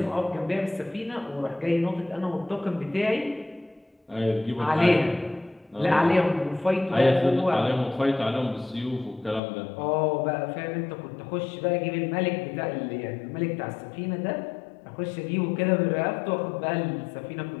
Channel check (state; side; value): drops out; right; at 9.4 s